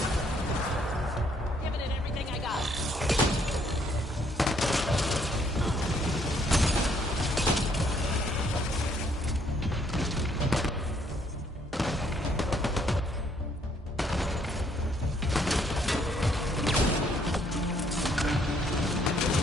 Giving it everything I got.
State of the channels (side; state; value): both; normal; correlation 0.67